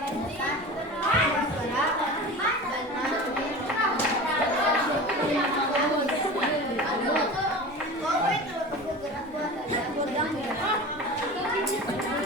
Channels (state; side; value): normal; both; correlation 0.33